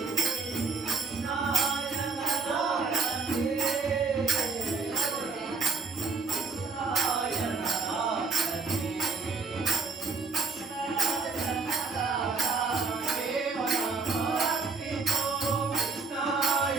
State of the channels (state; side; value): quieter; left; 4.5 dB